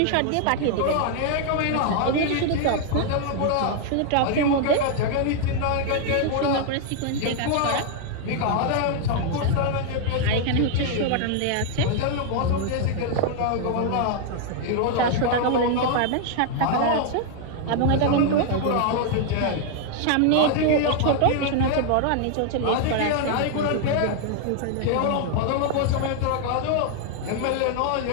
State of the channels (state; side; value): different; both; correlation 0.00